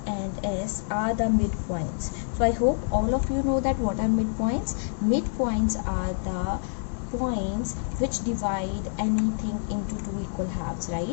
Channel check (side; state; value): right; silent; digital silence